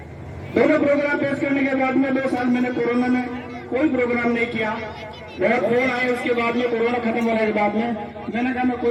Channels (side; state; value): both; identical; correlation 1.00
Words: दोनों प्रोग्राम पेश करने के बाद में 2 साल मैंने कोरोना में कोई प्रोग्राम नहीं किया। बहुत फोन आए उसके बाद में, कोरोना खत्म होने के बाद में मैंने कहा मैं कोई